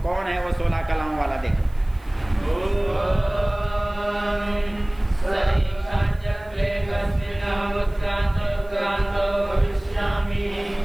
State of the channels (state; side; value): noise; right; hiss, 30 dB below the sound